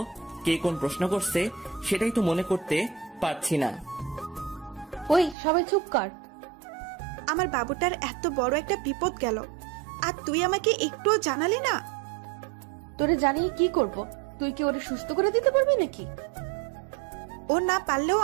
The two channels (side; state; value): left; drops out; at 5.4 s